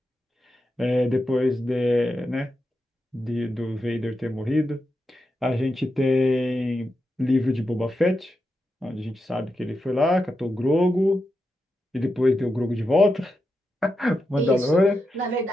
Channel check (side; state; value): both; normal; correlation 0.87